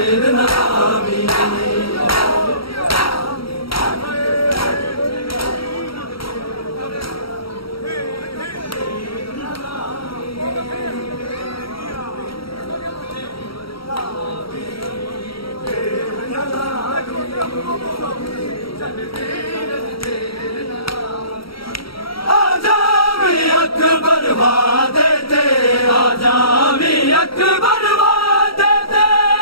अकबर वादे ते आजा भी अकबर वादे ते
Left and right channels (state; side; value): late; right; 0.75 ms